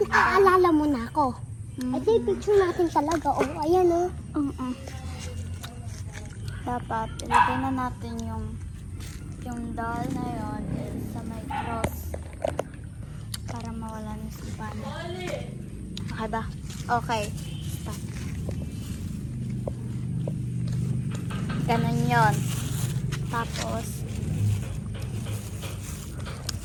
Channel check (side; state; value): both; identical; correlation 1.00